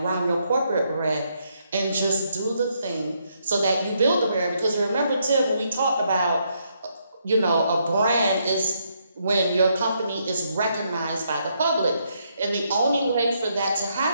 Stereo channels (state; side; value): inverted; both; correlation -0.76